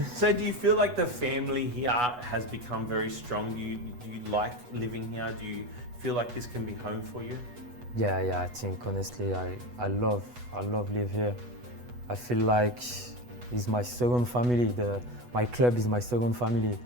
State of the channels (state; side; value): late; left; 8.2 ms